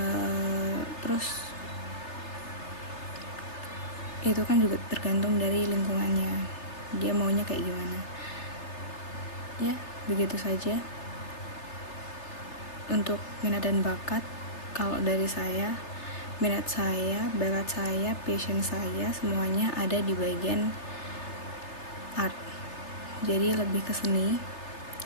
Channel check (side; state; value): right; late; 3.3 ms